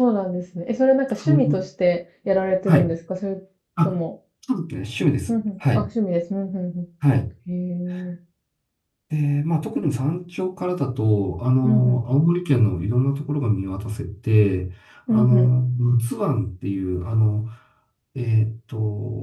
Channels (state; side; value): identical; both; correlation 1.00